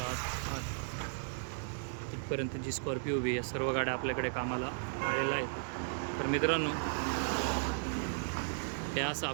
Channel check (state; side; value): silent; left; digital silence